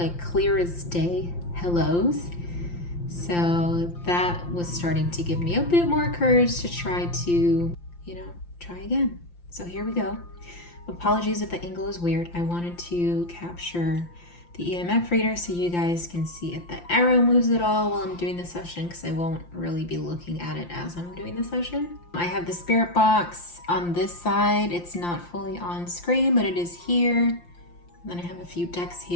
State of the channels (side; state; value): right; late; 5.8 ms